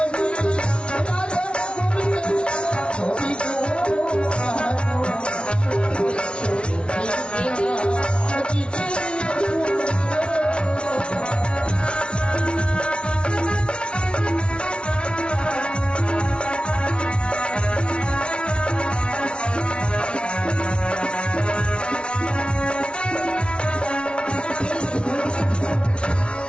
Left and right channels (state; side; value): late; right; 0.058 ms